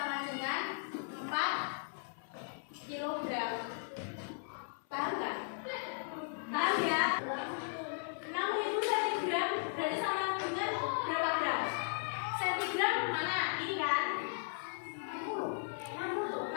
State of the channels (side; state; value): right; silent; 53 dB below the other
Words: dengan 4 kilogram. Paham nggak? Paham ya? 6.000 cm berarti sama dengan berapa gram? Sentigram mana? Ini kan?